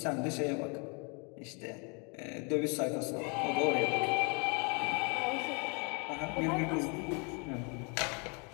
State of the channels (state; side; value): quieter; right; 34.1 dB